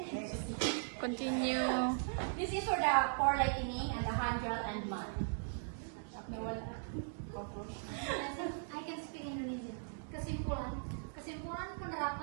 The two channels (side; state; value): left; silent; digital silence